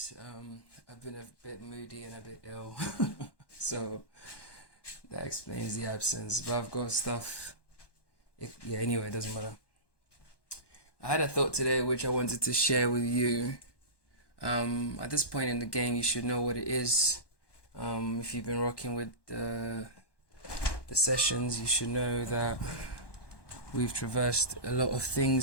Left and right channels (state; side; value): late; right; 1.2 ms